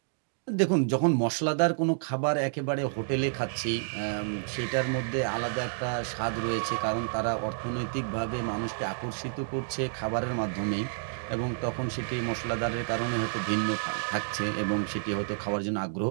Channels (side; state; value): left; silent; digital silence